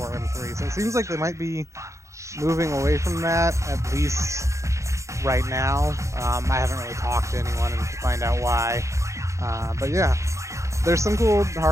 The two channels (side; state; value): left; late; 0.15 ms